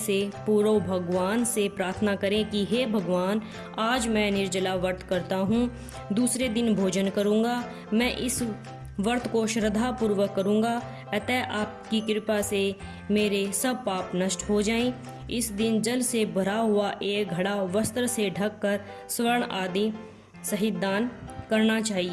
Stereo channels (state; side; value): identical; both; correlation 1.00